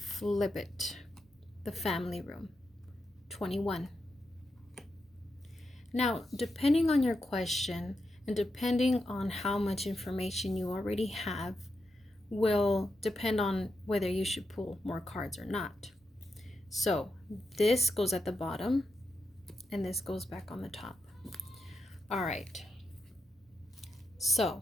it. The family room. 21. Now, depending on your question and depending on how much information you already have, will depend on whether you should pull more cards or not. So this goes at the bottom and this goes back on the top. All right.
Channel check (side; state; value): both; normal; correlation 0.86